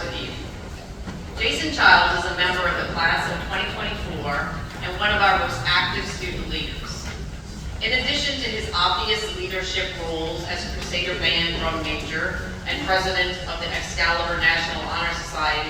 with you. Jason Childs is a member of the class of 2024 and one of our most active student leaders. In addition to his obvious leadership roles as Crusader Band drum major and president of the Excalibur National Honor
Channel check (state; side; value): identical; both; correlation 1.00